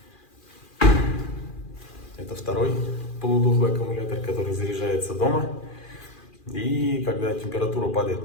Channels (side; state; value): right; late; 2.4 ms